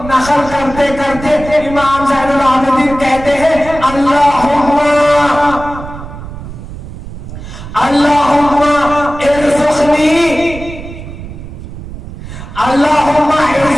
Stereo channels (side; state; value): right; noise; rumble, 12 dB below the sound